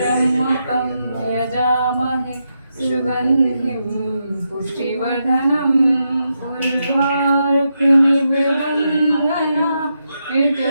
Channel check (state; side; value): inverted; both; correlation -0.84